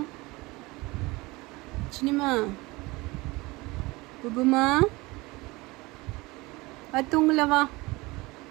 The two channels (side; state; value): left; quieter; 22.7 dB